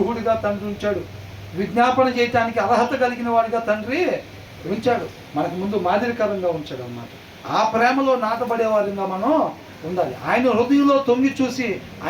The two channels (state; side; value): identical; both; correlation 1.00